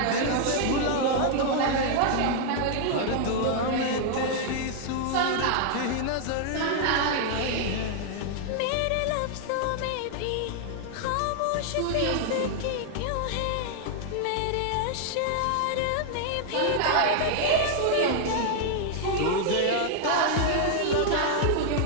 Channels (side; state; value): both; different; correlation 0.00